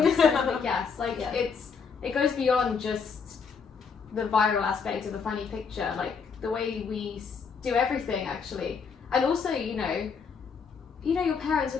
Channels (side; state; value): right; quieter; 5.8 dB